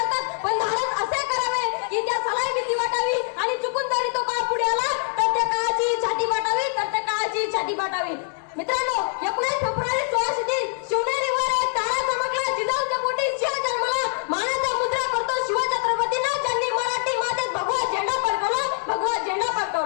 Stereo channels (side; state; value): right; silent; 60 dB below the other